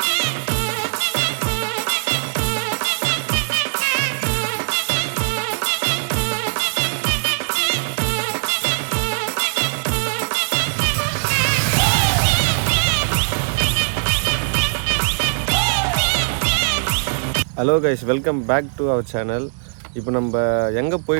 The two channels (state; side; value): silent; left; digital silence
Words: Hello guys, welcome back to our channel. இப்போ நம்ம எங்கே